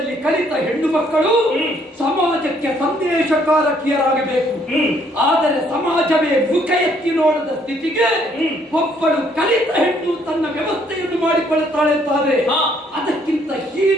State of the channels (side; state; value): both; normal; correlation 0.66